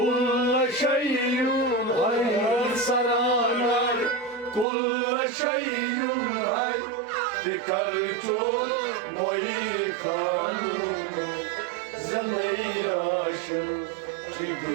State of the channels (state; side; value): drops out; left; at 4.7 s